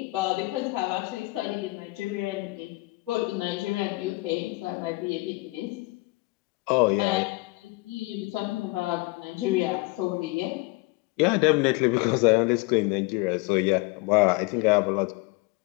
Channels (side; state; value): right; quieter; 24.2 dB